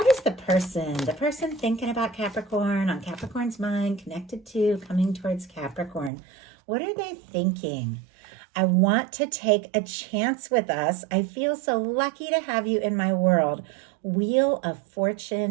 is the person thinking about Capricorn, on Capricorn's mind, connected to, coming towards Capricorn? What are they thinking? I want to take a chance with us. I feel so lucky to have you in my world. Wheel of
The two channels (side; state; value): left; drops out; at 6.1 s